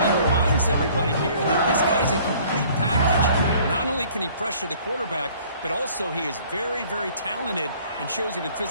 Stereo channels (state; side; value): inverted; both; correlation -0.55